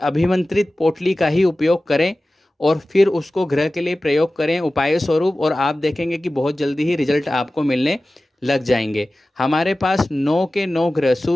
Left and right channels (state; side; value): normal; both; correlation 0.96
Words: पोटली का ही उपयोग करें और फिर उसको ग्रह के लिए प्रयोग करें उपाय स्वरूप, और आप देखेंगे कि बहुत जल्दी ही रिजल्ट आपको मिलने लग जाएंगे। हमारे पास 9 के 9 ग्रह,